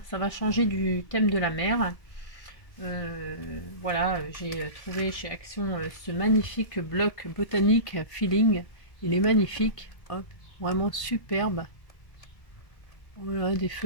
ça va changer du thème de la mer. Voilà, j'ai trouvé chez Action ce magnifique bloc botanique Feeling. Il est magnifique, hop, vraiment superbe. Voilà, des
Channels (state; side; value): late; right; 1.7 ms